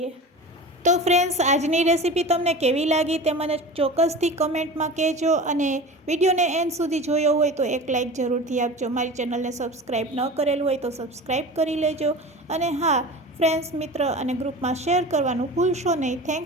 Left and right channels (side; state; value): both; normal; correlation 0.34